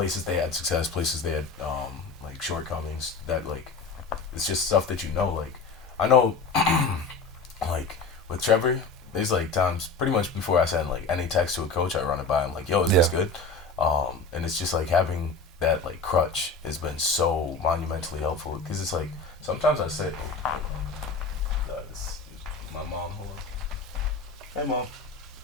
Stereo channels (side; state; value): right; quieter; 3.9 dB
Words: they had success, places they had like shortcomings. That like, it's just stuff that you know. Like I know, like with Trevor, there's like times pretty much before I send like any text to a coach, I run it by him like, "Yo, is this good?" And it's just like having that like crutch has been so monumentally helpful, because it's like sometimes I say, this is my mom. Hold on. Hey, Mom.